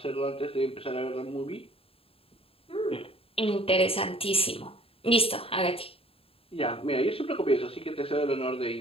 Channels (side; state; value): right; late; 0.27 ms